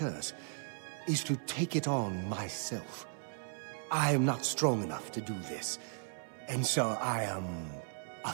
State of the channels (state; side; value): silent; left; 53 dB below the other